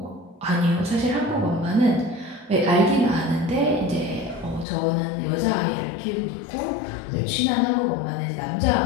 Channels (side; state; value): right; drops out; at 4.7 s